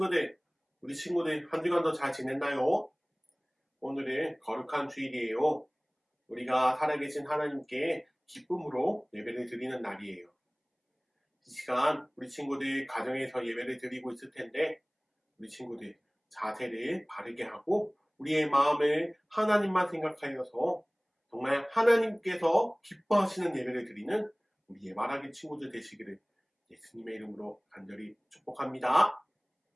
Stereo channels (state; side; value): identical; both; correlation 1.00